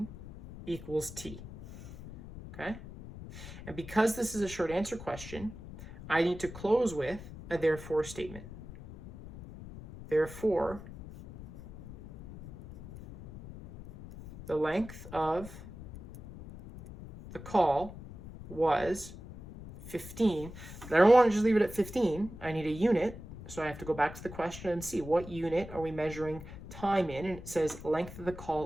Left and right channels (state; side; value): noise; left; rumble, 14 dB below the sound